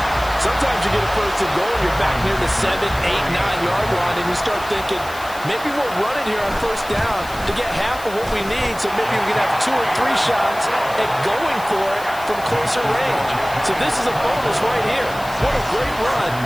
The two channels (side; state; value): left; noise; hiss, 17 dB below the sound